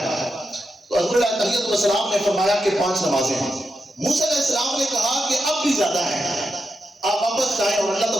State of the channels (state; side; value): normal; both; correlation 0.87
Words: تو حضور علیہ تحیت والسلام نے فرمایا کہ 5 نمازیں ہیں۔ موسیٰ علیہ السلام نے کہا کہ اب بھی زیادہ ہیں، آپ واپس جائیں اور اللہ